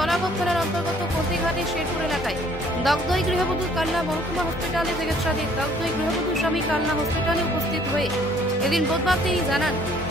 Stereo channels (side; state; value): both; normal; correlation 0.60